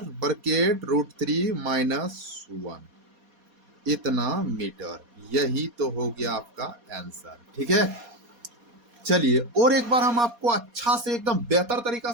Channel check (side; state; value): left; late; 4.2 ms